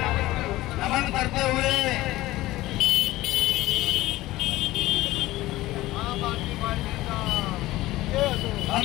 नमन करते हुए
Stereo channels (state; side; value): quieter; right; 17.5 dB